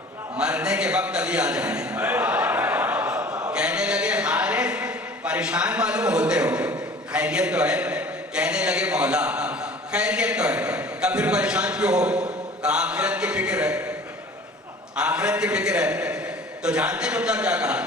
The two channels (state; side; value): normal; both; correlation 0.46